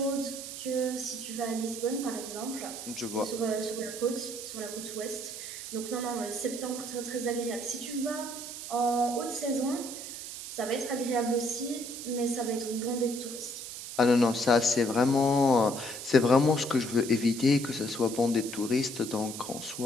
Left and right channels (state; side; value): noise; right; hiss, 9 dB below the sound